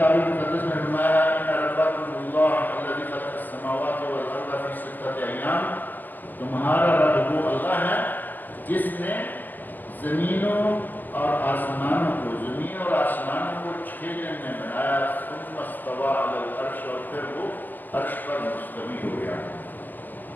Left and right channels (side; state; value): right; late; 0.086 ms